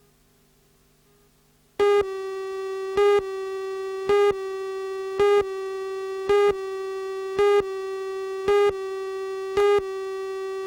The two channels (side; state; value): both; identical; correlation 1.00